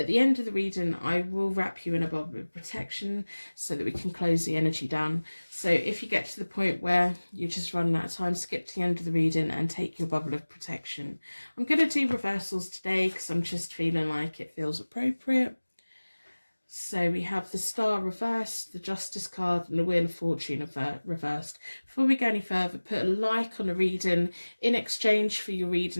the end of the reading, I will wrap you in a bubble of protection so that we can close the energy down. So if you get to the point where you're just running out of time, skip to the end of the reading and take your bubble of protection. I'm going to do reversals today because I'm just feeling like it feels appropriate. So we have the Star reversed, the Justice card, and the Wheel of Fortune reversed. Before we go any further, put a like on the reading in exchange for your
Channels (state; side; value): inverted; both; correlation -1.00